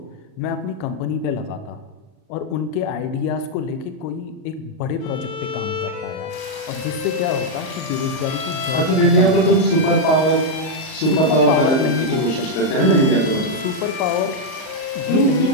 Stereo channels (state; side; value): late; right; 38 ms